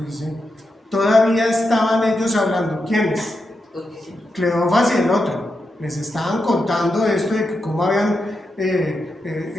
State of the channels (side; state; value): both; normal; correlation 0.86